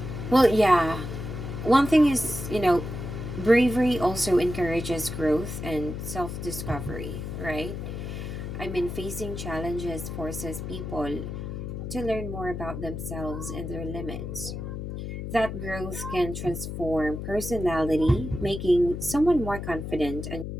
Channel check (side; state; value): left; noise; hum, 6 dB below the sound